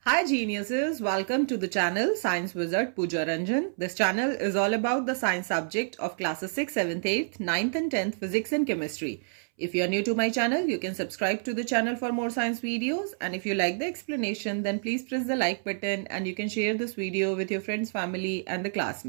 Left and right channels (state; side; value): silent; left; 59 dB below the other